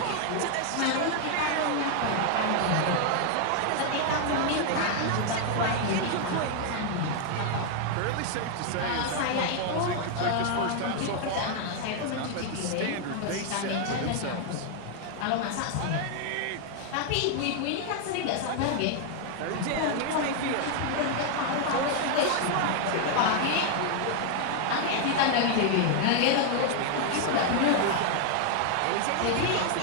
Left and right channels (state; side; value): different; both; correlation 0.00